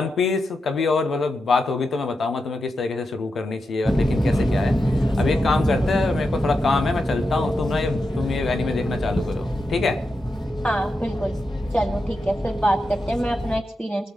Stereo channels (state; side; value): normal; both; correlation 0.88